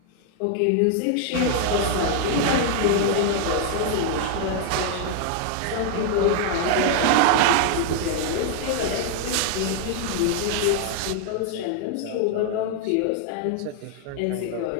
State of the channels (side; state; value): both; different; correlation 0.00